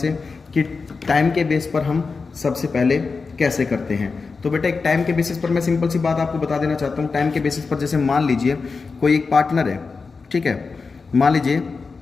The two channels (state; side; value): quieter; right; 4.6 dB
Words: कि टाइम के बेस पर हम सबसे पहले कैसे करते हैं। तो बेटा एक टाइम के बेसिस पर मैं सिंपल सी बात आपको बता देना चाहता हूँ। टाइम के बेसिस पर जैसे मान लीजिए कोई एक पार्टनर है, ठीक है, मान लीजिए